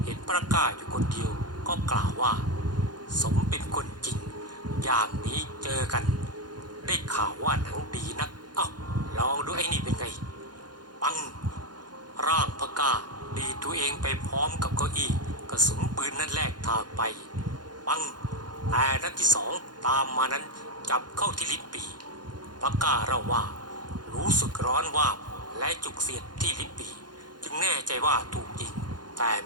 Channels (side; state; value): left; late; 0.70 ms